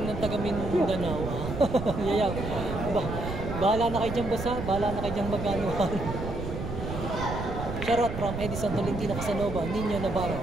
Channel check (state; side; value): noise; right; rumble, 6 dB below the sound